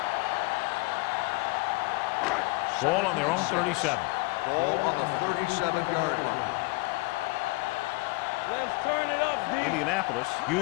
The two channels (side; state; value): right; quieter; 25.1 dB